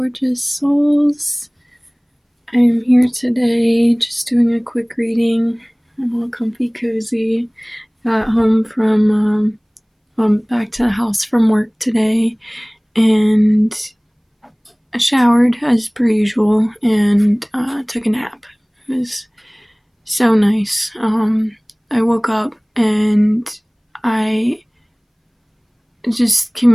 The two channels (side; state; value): both; identical; correlation 1.00